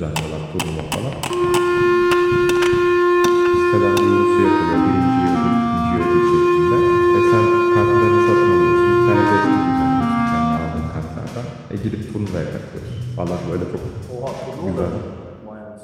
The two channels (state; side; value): identical; both; correlation 1.00